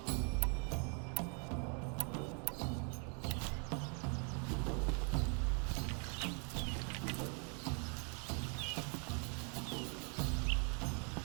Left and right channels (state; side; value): quieter; left; 38.2 dB